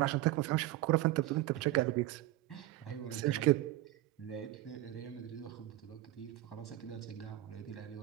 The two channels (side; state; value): left; quieter; 15.9 dB